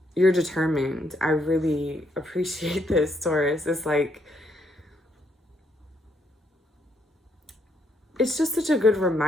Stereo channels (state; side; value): normal; both; correlation 0.74